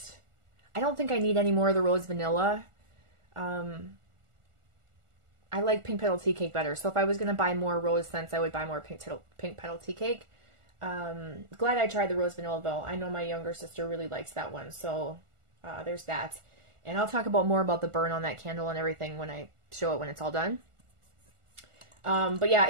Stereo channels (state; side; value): late; left; 1.4 ms